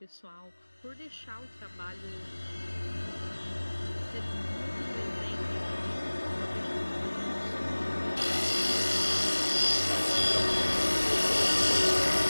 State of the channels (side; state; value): both; inverted; correlation -1.00